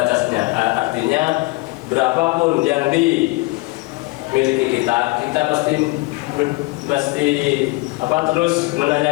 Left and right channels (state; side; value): quieter; right; 23.7 dB